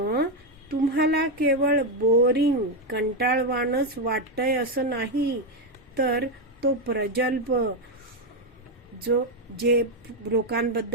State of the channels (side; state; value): both; normal; correlation 0.05